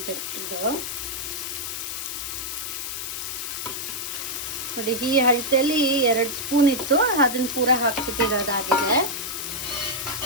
ಇದು ನೋಡಿ, ಈ ಅಳತೆಯಲ್ಲಿ 2 ಸ್ಪೂನ್ ಇತ್ತು, ಅದನ್ನು ಪೂರ ಹಾಕ್ಬಿಟ್ಟಿರೋದಾಗಿದೆ.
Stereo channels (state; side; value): noise; left; hiss, 5 dB below the sound